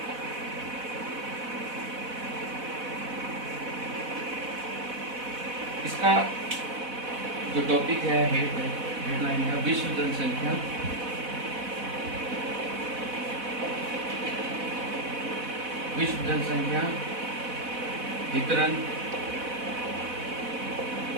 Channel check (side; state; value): left; late; 4.1 ms